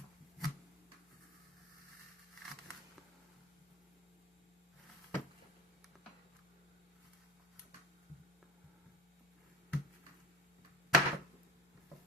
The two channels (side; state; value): both; normal; correlation 0.34